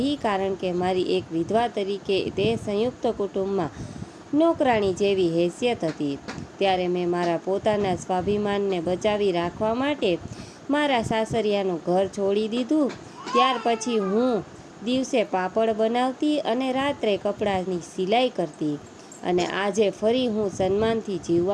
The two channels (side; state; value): both; identical; correlation 1.00